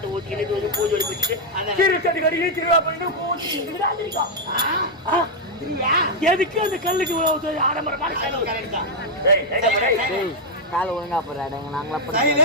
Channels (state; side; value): normal; both; correlation -0.01